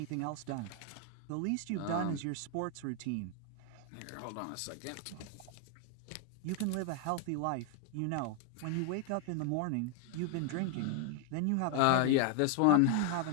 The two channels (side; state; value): both; different; correlation 0.00